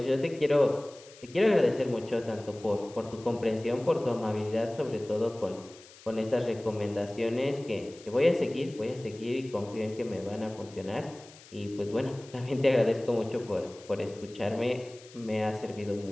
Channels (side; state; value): left; noise; hiss, 21 dB below the sound